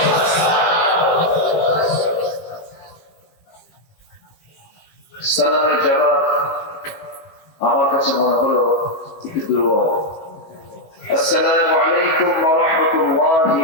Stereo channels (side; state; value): right; late; 19 ms